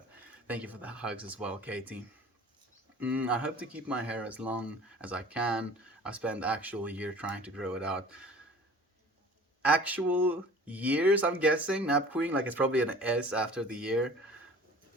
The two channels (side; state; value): both; normal; correlation 0.45